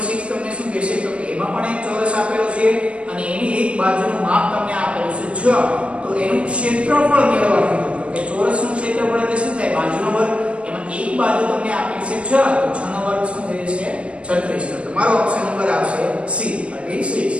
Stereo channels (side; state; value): left; late; 0.060 ms